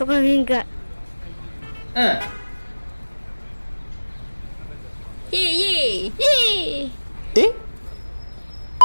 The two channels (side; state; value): both; inverted; correlation -1.00